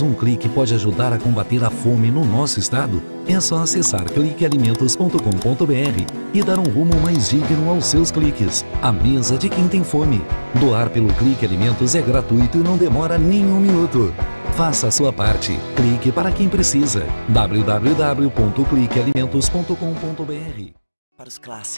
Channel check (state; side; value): inverted; both; correlation -1.00